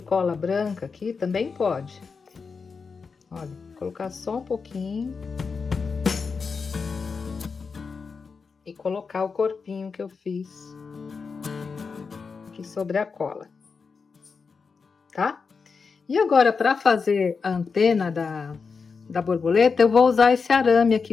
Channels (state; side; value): quieter; right; 5.1 dB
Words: branca aqui, também pode. Olha, colocar só um pouquinho. E colocar o corpinho que eu fiz aqui sobre a cola. Tá? E agora, para fazer a antena da borboleta, eu vou usar esse arame